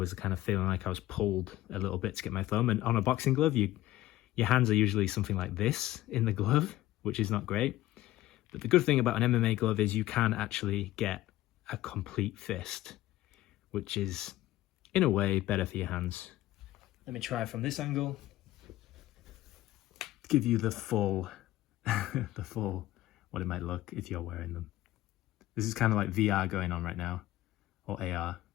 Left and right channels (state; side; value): quieter; right; 15.8 dB